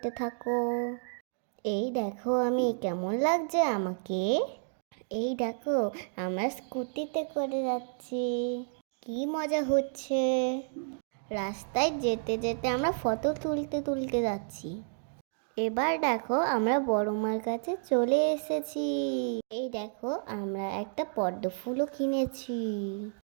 থাকো। এই দেখো আমি কেমন লাগছে আমাকে। এই দেখো আমরা স্কুটিতে করে যাচ্ছি, কি মজা হচ্ছে। রাস্তায় যেতে যেতে আমরা ফটো তুলতে তুলতে যাচ্ছি। এবার দেখো আমরা বড় মার কাছে চলে এসেছি। এই দেখো আমরা একটা পদ্ম ফুলও কিনেছি।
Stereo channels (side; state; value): left; silent; digital silence